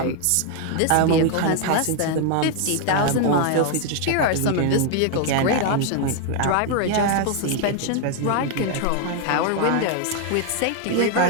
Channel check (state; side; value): different; both; correlation 0.00